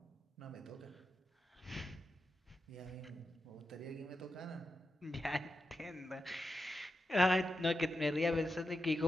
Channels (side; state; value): both; normal; correlation 0.89